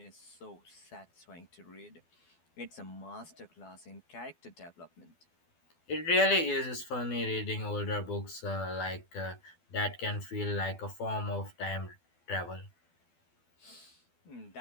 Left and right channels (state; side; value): late; right; 12 ms